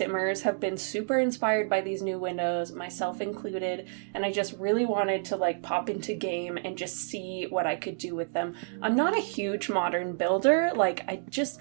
have been super inspired by these new windows, myself included, and I just really wanted to pop into game and just see what I could do with them. I'm not a huge modern builder, I just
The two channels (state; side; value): silent; left; digital silence